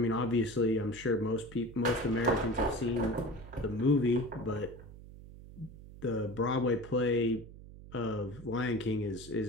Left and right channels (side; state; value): right; noise; hum, 16 dB below the sound